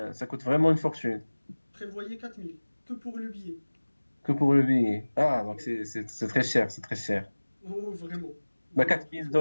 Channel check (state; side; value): inverted; both; correlation -1.00